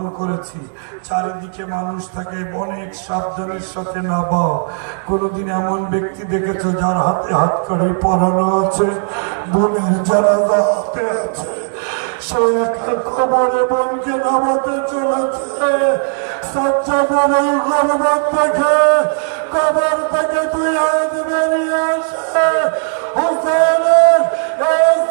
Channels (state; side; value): silent; left; digital silence